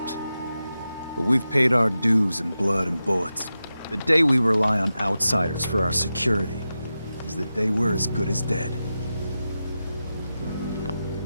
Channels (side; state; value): both; inverted; correlation -0.92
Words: But we've paid our dues in blood and bullets. The day we rely on outsiders for our security is the day we're as good as dead.